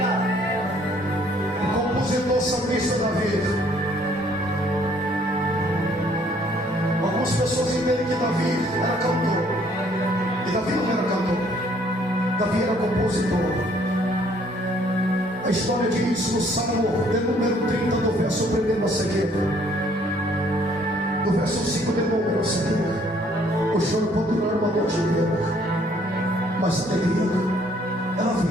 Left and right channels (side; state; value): both; normal; correlation 0.62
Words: Compositor salmista Davi. Algumas pessoas entendem que Davi era cantor, e Davi não era cantor, Davi era compositor. A história diz no Salmo de número 30, do verso 1 a seguir, do verso 5 de número a seguir: o choro pode durar uma noite inteira, mas a alegria ela